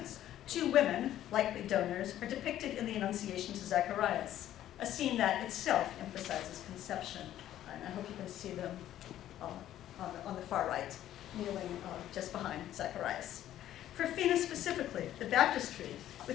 Two women, likely donors, are depicted in the Annunciation to Zacharias, a scene that itself emphasizes conception. And I hope you can see them on the far right, kneeling just behind Zacharias. For Fina specifically, the baptistry,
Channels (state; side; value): quieter; right; 12.4 dB